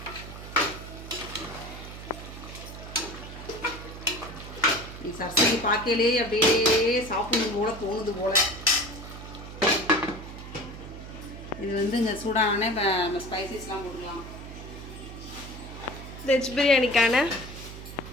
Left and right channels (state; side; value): noise; right; hum, 12 dB below the sound